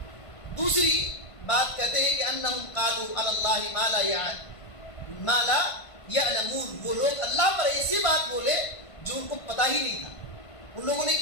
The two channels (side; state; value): right; late; 1.5 ms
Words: دوسری بات کہتے ہیں کہ انہم قالوا علی اللہ ما لا یعلمون. وہ لوگ اللہ پر ایسی بات بولے جو ان کو پتہ ہی نہیں تھا. ان لوگوں نے